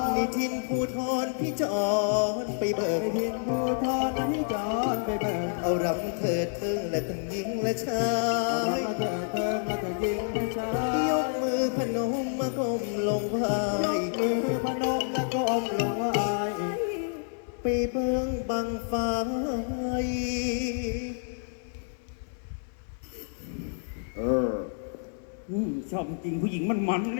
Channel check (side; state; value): right; silent; 59 dB below the other